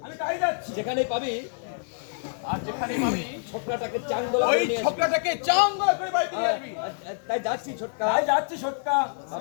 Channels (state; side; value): silent; right; digital silence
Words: আমি তাই যাচ্ছি। যেখানে পাবি আর যেখানে পাবি ছোটকাটাকে চাঙ্গলা ওই করে নিয়ে আসবি। ছোকরাটাকে চাঙ্গলা করে বাড়িতে নিয়ে আসবি। তাই যাচ্ছি ছোটকা। তাই যাচ্ছি ছোটকা, বাবা